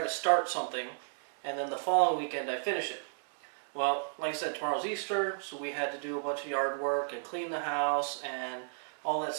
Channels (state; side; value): silent; left; 56 dB below the other